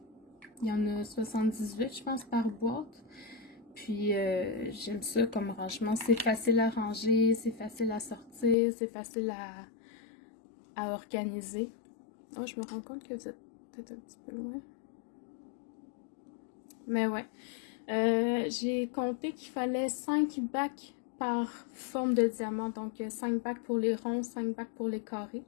Il y en a 78, je pense, par boîte. Puis, j'aime ça comme rangement. C'est facile à ranger, c'est facile à sortir, c'est facile à organiser. Oh, je me rends compte que vous êtes peut-être un petit peu loin. Mais ouais. J'ai compté qu'il fallait 5 bacs par forme de diamant. Donc, 5 bacs pour les ronds, 5 bacs pour les carrés.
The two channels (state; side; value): drops out; right; at 8.6 s